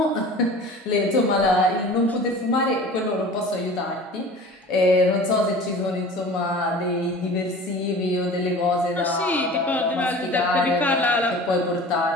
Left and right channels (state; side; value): normal; both; correlation 0.40